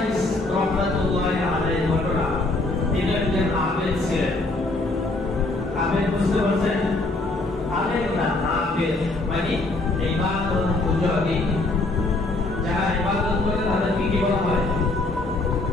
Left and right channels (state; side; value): quieter; right; 3.0 dB